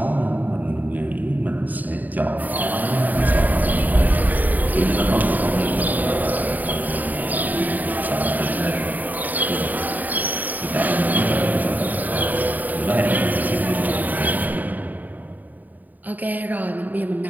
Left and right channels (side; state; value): left; late; 0.083 ms